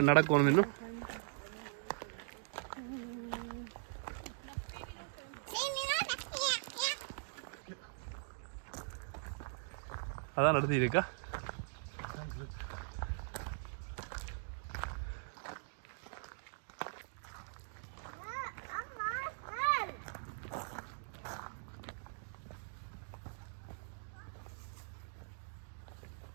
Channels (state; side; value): silent; left; digital silence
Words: நடக்கணும் இன்னும்? அதான் நடத்தி இருக்கா?